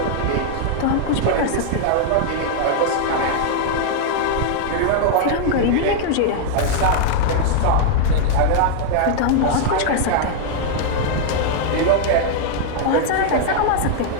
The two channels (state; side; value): different; both; correlation 0.00